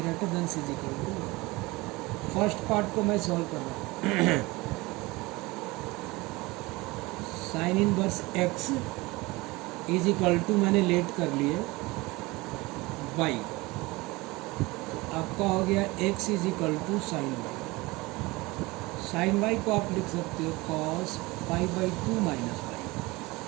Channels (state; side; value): quieter; left; 22.3 dB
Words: than is equal to. First part को मैं solve कर रहा हूँ। Sine inverse x is equal to मैंने let कर लिए y, आपका हो गया x is equal to sine y. Sine y को आप लिख सकते हो cos pi by two minus y.